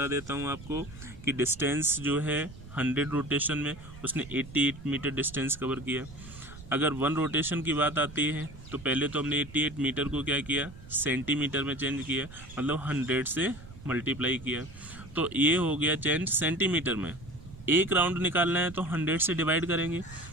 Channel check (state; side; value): noise; right; rumble, 16 dB below the sound